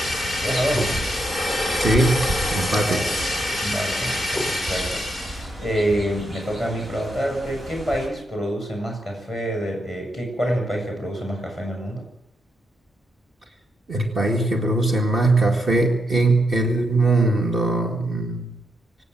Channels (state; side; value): normal; both; correlation 0.81